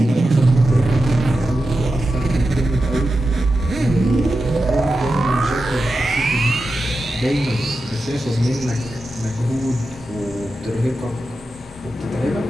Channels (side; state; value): both; normal; correlation 0.91